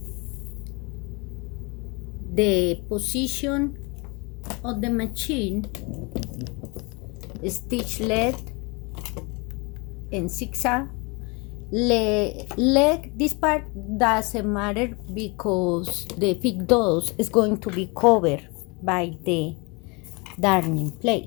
The position of the machine, stitch lead in zigzag. Leg, this part doesn't matter because the big dose is going to be covered by the darning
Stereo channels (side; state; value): right; quieter; 29.0 dB